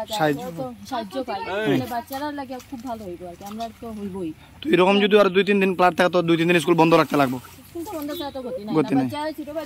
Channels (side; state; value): both; identical; correlation 1.00